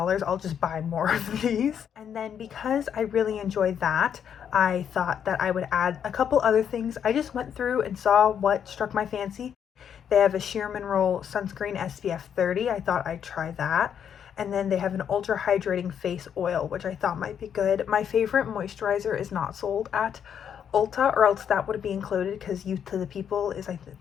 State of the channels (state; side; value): quieter; right; 8.4 dB